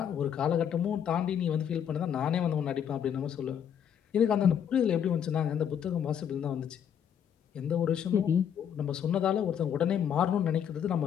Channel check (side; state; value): right; quieter; 8.6 dB